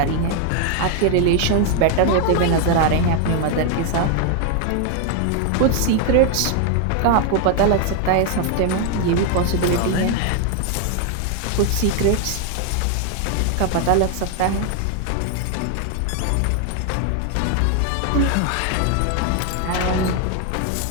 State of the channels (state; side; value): different; both; correlation 0.01